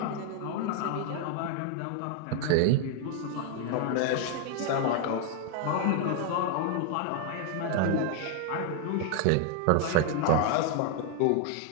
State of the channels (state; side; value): different; both; correlation 0.00